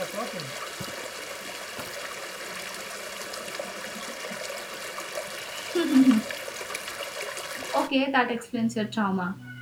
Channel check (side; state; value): both; identical; correlation 1.00